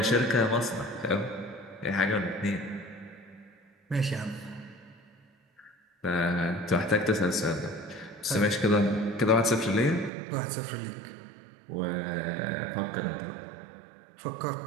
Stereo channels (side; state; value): left; drops out; at 10.1 s